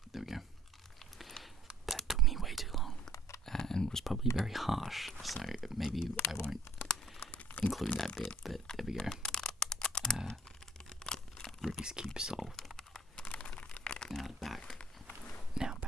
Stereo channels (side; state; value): both; normal; correlation 0.57